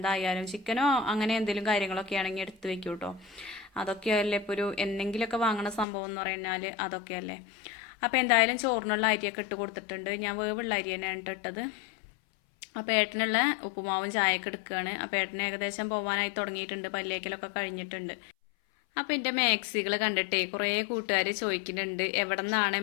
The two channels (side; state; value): right; drops out; at 5.9 s